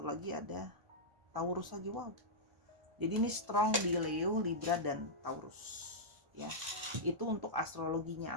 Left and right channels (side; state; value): left; late; 1.5 ms